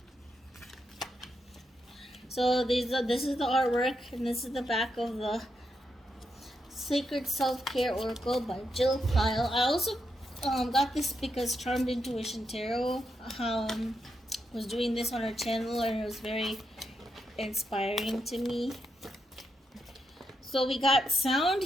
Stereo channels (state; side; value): normal; both; correlation 0.83